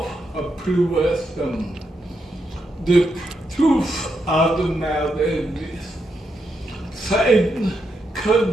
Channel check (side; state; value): both; normal; correlation 0.82